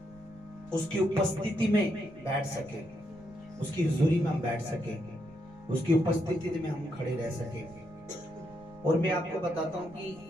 उसकी उपस्थिति में बैठ सके, उसकी हुजूरी में हम बैठ सके, उसकी उपस्थिति में हम खड़े रह सके। और मैं आपको बताता हूं कि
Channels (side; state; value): right; noise; rumble, 24 dB below the sound